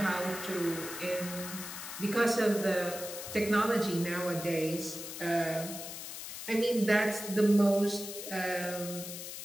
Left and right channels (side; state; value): left; noise; hiss, 9 dB below the sound